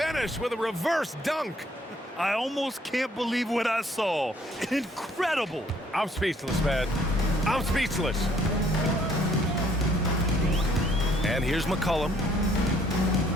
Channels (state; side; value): normal; both; correlation 0.63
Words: with a reverse dunk. I almost can't believe what I saw. Incredible. I'm speechless, man. I'm speechless. And here's McCollum.